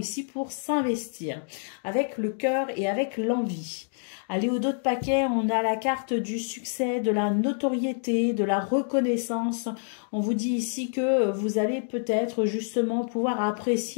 pour s'investir avec le cœur et avec l'envie. Allez, au dos de paquet, on a la carte du succès, de la notoriété, de la reconnaissance. On vous dit ici que vous allez peut-être justement pouvoir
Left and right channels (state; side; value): silent; right; digital silence